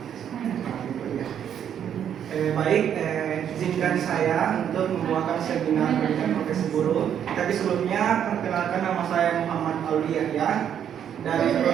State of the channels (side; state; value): left; quieter; 9.2 dB